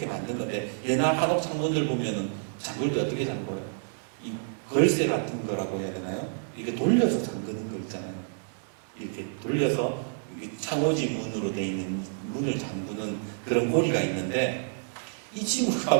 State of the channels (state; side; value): silent; left; digital silence